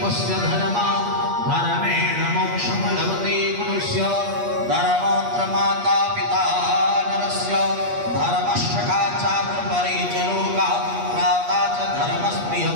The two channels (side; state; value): left; late; 8.4 ms